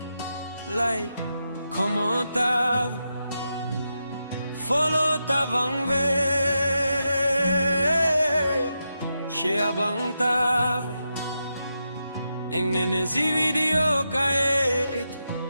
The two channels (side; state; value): both; inverted; correlation -0.87